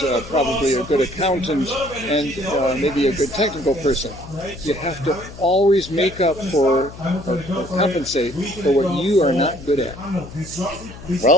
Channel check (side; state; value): left; noise; hum, 15 dB below the sound